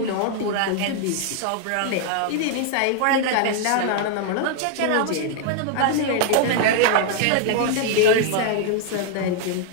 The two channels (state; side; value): different; both; correlation 0.00